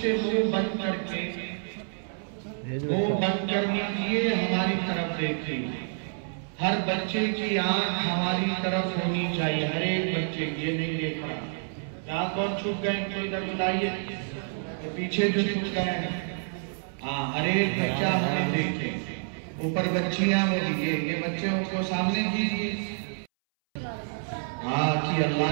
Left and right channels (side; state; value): left; silent; 59 dB below the other